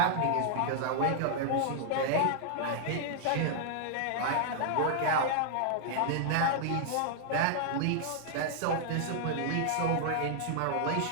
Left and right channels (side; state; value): both; different; correlation -0.01